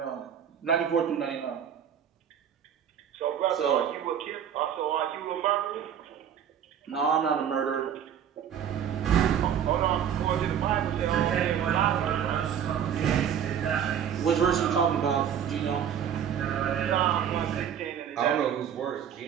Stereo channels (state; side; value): quieter; left; 8.8 dB